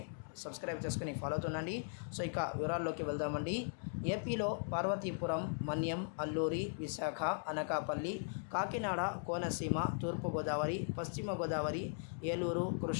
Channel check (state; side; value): silent; right; digital silence